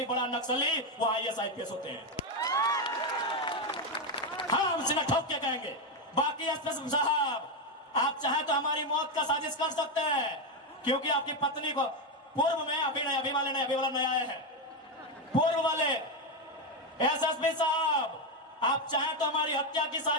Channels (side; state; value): both; normal; correlation 0.08